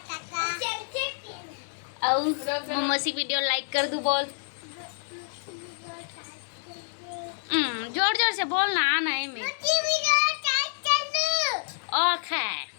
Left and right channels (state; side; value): silent; right; digital silence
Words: टाटा और मम्मी वीडियो लाइक कर दू बोल जोर जोर से बोलना आना है मैं ओके